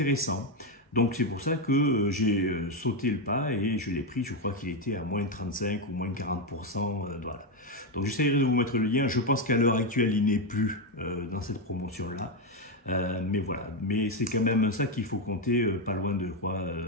Donc c'est pour ça que j'ai sauté le pas et je l'ai pris, je crois qu'il était à moins de 35 ou moins de 40%. Voilà. Donc j'essaierai de vous mettre le lien, je pense qu'à l'heure actuelle il n'est plus dans cette promotion-là. Mais voilà, mais c'est quand même un sac qu'il faut compter pas loin de quoi,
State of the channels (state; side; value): normal; both; correlation 0.07